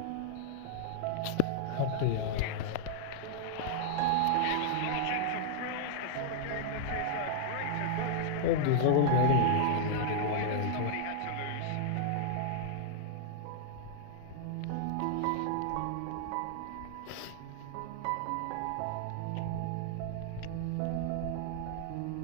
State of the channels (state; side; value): different; both; correlation -0.01